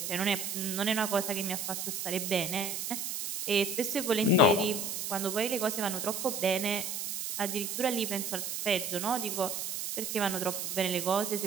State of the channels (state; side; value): noise; right; hiss, 4 dB below the sound